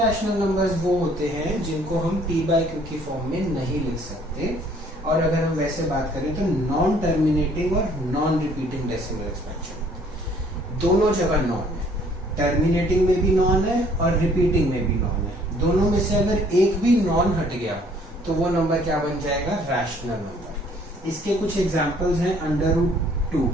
नंबर्स वो होते हैं जिनको हम p/q की फॉर्म में नहीं लिख सकते। और अगर हम वैसे बात करें तो नॉन टर्मिनेटिंग और नॉन रिपीटिंग डेसिमल एक्सपेंशन, दोनों जगह नॉन है। टर्मिनेटिंग में भी नॉन है और रिपीटिंग में भी नॉन है। दोनों में से अगर एक भी नॉन हट गया तो वो नंबर क्या बन जाएगा? Rational number. इसके कुछ एग्जांपल्स हैं अंडर रूट 2,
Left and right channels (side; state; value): both; normal; correlation 0.59